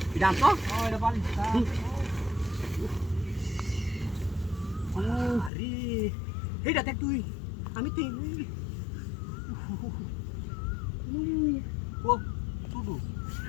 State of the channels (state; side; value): drops out; right; at 5.5 s